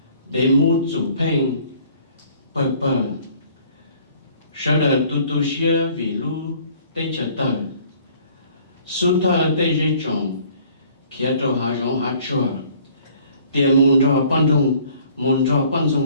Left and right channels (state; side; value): inverted; both; correlation -0.56